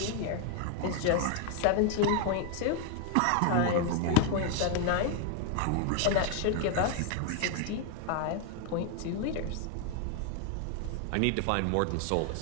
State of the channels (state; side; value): different; both; correlation 0.01